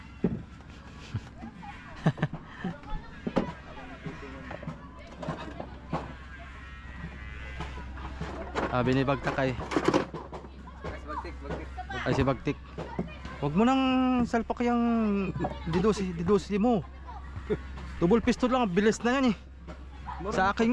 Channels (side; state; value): both; identical; correlation 1.00